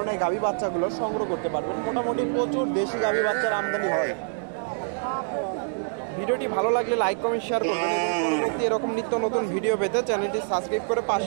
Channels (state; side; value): silent; left; digital silence